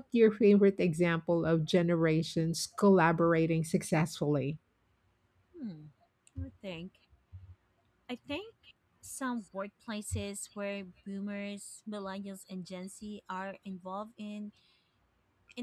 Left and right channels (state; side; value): identical; both; correlation 1.00